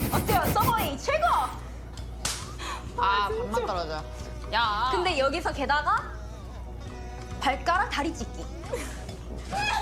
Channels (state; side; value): identical; both; correlation 1.00